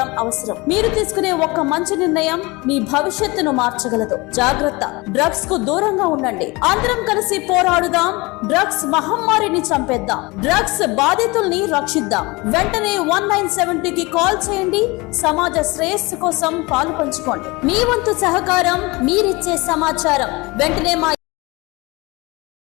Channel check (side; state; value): right; quieter; 24.2 dB